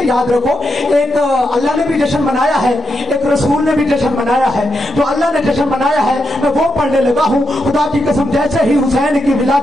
یاد رکھو ایک اللہ نے بھی جشن منایا ہے, ایک رسول نے بھی جشن منایا ہے. جو اللہ نے جشن منایا ہے میں وہ پڑھنے لگا ہوں. خدا کی قسم جیسے ہی حسین کی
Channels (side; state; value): both; normal; correlation 0.84